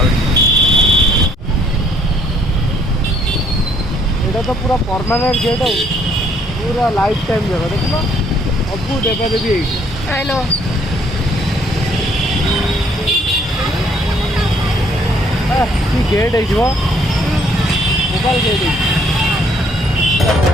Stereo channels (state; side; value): normal; both; correlation 0.64